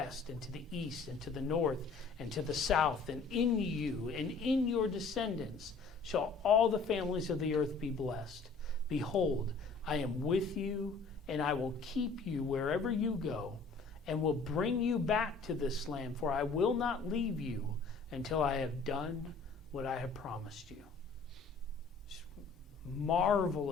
and to the east and to the north and to the south, and in you and in your descendants shall all the families of the earth be blessed. Behold, I am with you, and I will keep you wherever you go, and will bring you back to this land, for I will not leave you until I have done what I have promised you.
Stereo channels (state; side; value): quieter; right; 4.4 dB